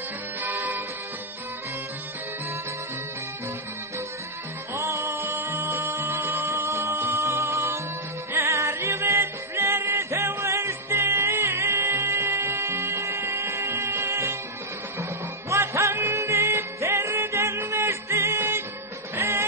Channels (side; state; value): both; normal; correlation -0.06